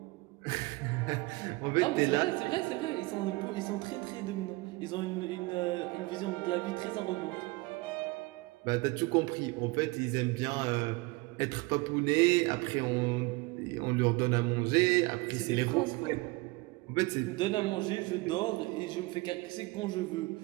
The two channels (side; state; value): left; quieter; 23.7 dB